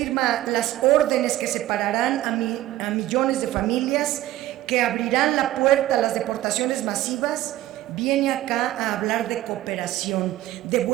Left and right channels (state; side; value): quieter; left; 14.8 dB